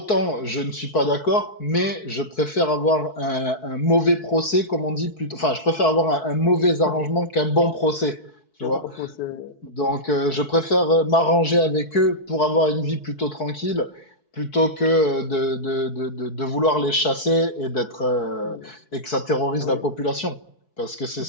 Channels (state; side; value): late; right; 4.6 ms